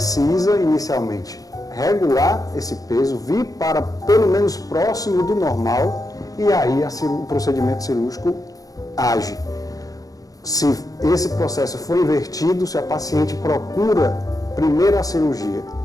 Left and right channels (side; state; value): right; late; 0.17 ms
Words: inicialmente regular esse peso, vir para pelo menos próximo do normal e aí o procedimento cirúrgico age. Se esse processo for invertido, se a paciente procura primeiro a cirurgia